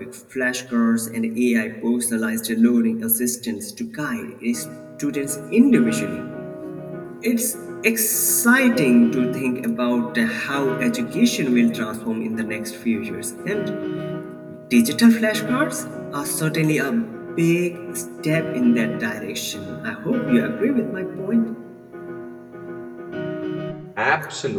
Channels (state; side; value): identical; both; correlation 1.00